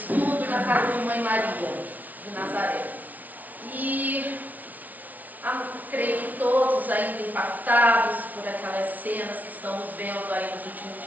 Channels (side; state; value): left; late; 0.076 ms